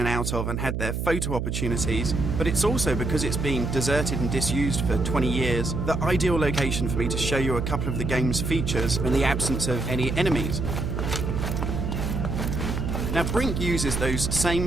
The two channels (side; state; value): right; noise; hum, 2 dB below the sound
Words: out of and had their photo opportunities, but it's also, because it's been deserted and disused for 20 years, the ideal location for me to show you a couple of the game's features in the absence of any enemies. Now, Brink uses those same